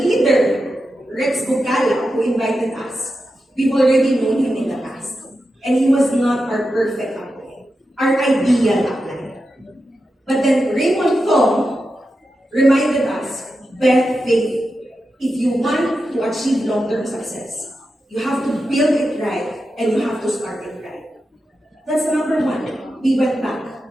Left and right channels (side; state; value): both; normal; correlation 0.90